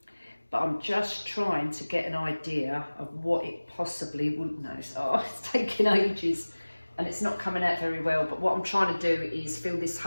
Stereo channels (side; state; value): both; inverted; correlation -1.00